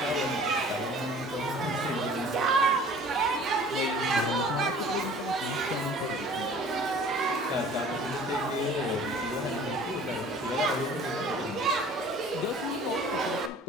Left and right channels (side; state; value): both; normal; correlation 0.48